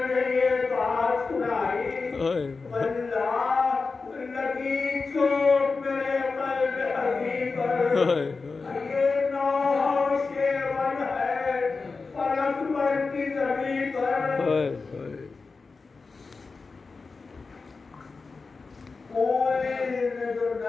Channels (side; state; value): right; quieter; 4.3 dB